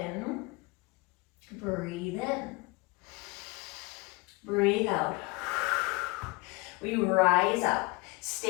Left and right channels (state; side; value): quieter; right; 26.4 dB